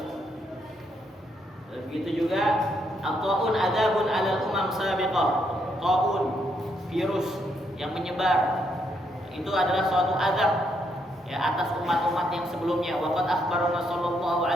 Begitu juga at-taun adzabun 'alal umam sabiqah. Taun, virus yang menyebar, itu adalah suatu azab ya atas umat-umat yang sebelumnya. Waqad akhbarana sallallahu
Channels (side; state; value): both; normal; correlation 0.76